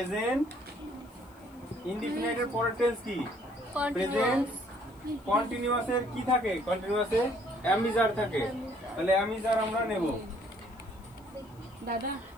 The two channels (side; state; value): left; noise; hiss, 29 dB below the sound